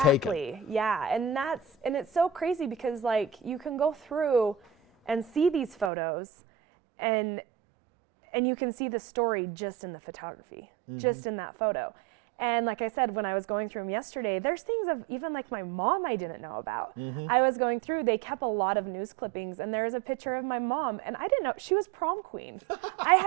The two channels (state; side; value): drops out; left; at 5.9 s